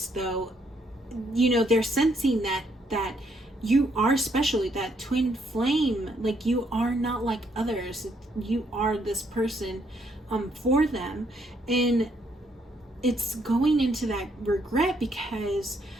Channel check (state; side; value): normal; both; correlation 0.72